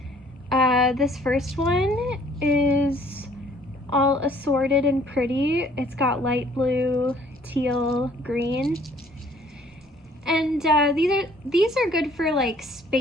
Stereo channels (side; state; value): both; normal; correlation 0.58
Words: This first one is all assorted and pretty. It's got light blue, teal, green. And these are good for like